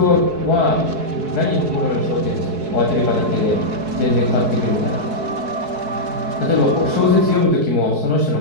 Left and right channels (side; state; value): left; late; 4.7 ms